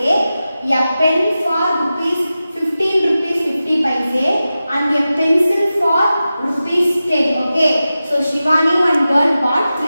a pen for rupees 15 rupees 50 paise, and a pencil for rupees 10. Okay. So Shivani one girl bought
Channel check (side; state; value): both; inverted; correlation -0.94